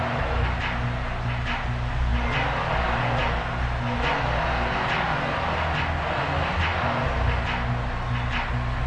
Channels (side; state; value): both; identical; correlation 1.00